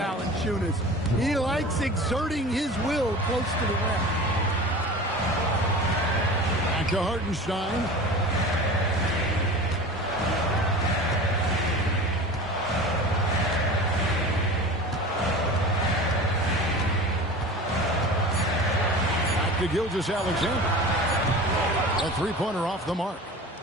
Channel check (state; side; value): normal; both; correlation 0.35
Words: He likes exerting his will close to the rim. Back to Hartenstein. Back to Gilgeous-Alexander. A three-pointer off the mark.